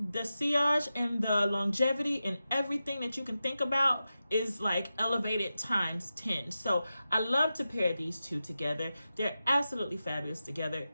the sillage and the longevity and everything that you can think about is like elevated times 10. So I love to pair these two together. They're absolutely fabulous together.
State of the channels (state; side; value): inverted; both; correlation -0.92